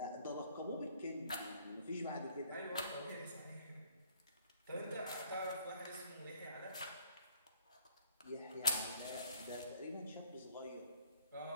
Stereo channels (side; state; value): both; inverted; correlation -0.59